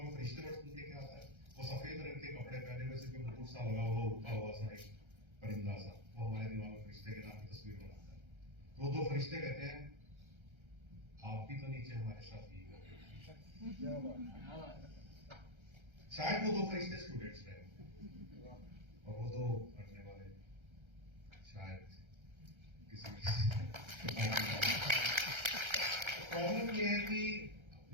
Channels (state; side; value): late; left; 1.3 ms